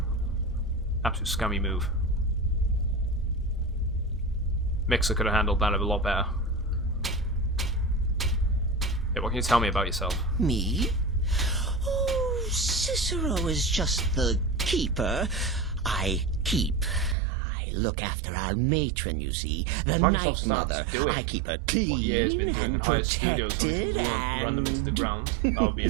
Absolute scummy move. Mixer could have handled that a lot better. Yeah, what can you tell me about yourself? Me? Oh, Cicero is just the keeper. I keep. I look after our matron, you see. The Microsoft Night starts Mother. doing I keep her clean what EA's been doing in and higher studios when protected we run them into the and ground. That would be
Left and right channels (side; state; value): left; drops out; at 17.2 s